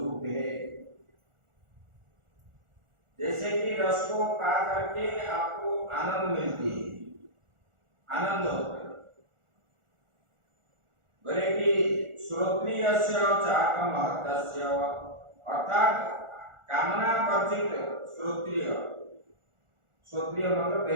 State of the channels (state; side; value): late; left; 1.4 ms